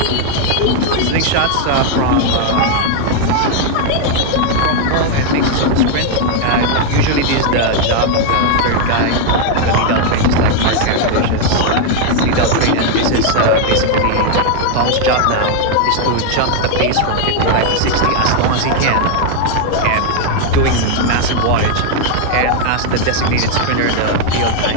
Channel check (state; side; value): different; both; correlation 0.00